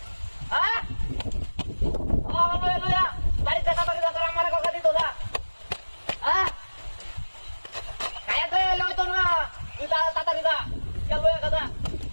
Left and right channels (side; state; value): both; inverted; correlation -1.00